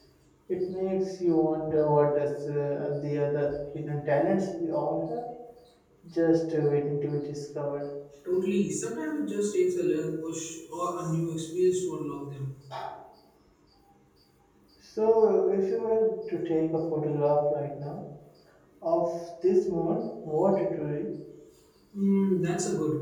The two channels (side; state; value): both; identical; correlation 1.00